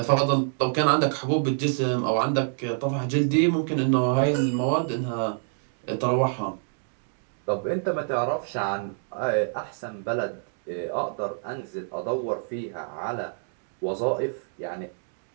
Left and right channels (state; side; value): silent; left; digital silence